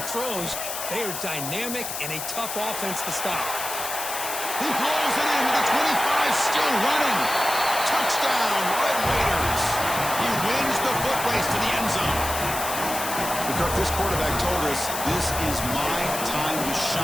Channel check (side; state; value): left; noise; hiss, 5 dB below the sound